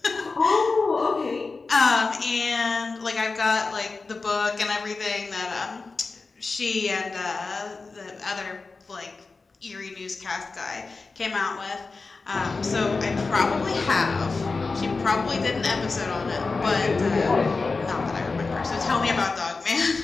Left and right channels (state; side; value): quieter; right; 4.0 dB